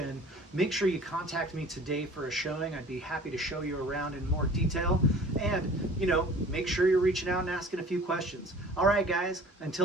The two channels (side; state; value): both; normal; correlation 0.46